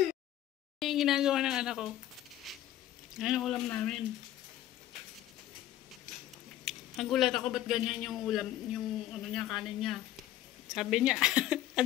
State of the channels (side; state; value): right; quieter; 13.0 dB